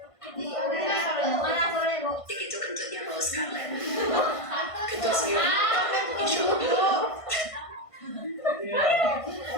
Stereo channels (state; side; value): late; right; 1.5 ms